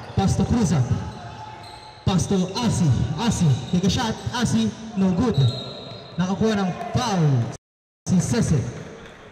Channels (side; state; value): both; identical; correlation 1.00